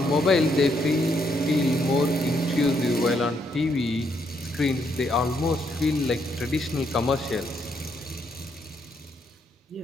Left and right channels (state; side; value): normal; both; correlation 0.75